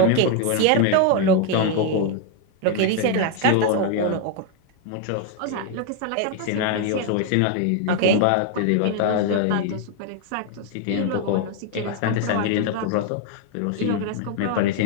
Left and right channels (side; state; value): both; different; correlation 0.01